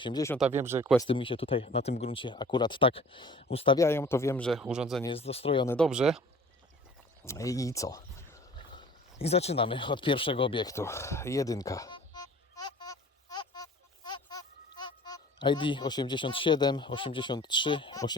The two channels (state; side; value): normal; both; correlation 0.46